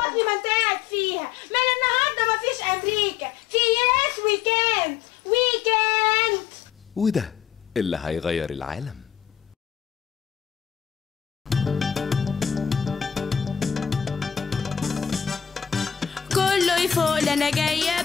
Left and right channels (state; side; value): quieter; right; 8.7 dB